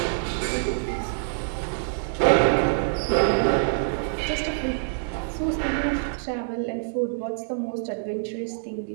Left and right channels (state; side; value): silent; left; 61 dB below the other